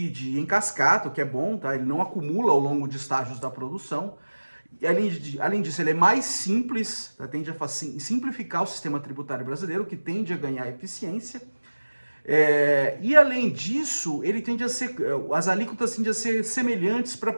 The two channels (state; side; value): inverted; both; correlation -1.00